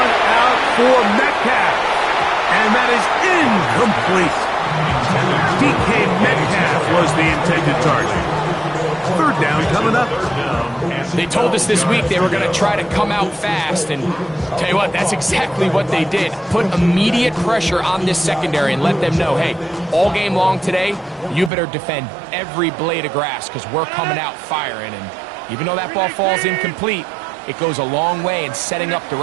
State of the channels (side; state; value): left; drops out; at 21.5 s